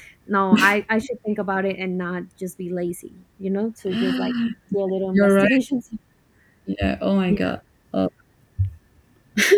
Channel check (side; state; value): both; identical; correlation 1.00